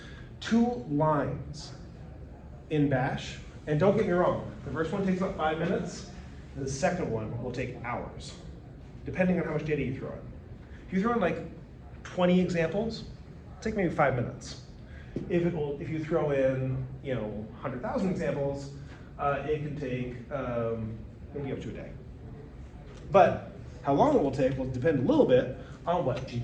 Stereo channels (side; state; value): both; identical; correlation 1.00